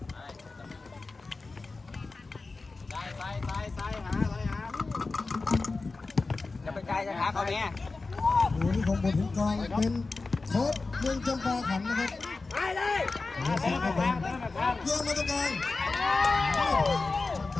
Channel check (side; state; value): right; quieter; 3.8 dB